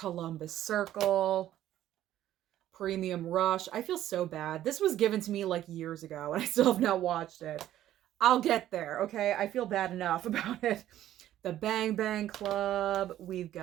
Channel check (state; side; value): quieter; left; 12.7 dB